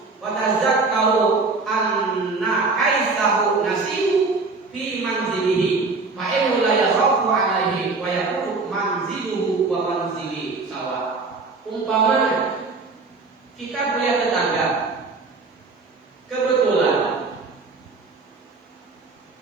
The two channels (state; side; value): quieter; left; 4.0 dB